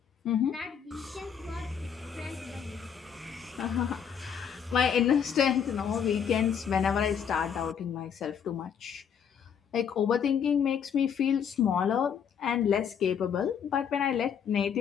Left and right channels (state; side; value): quieter; right; 7.7 dB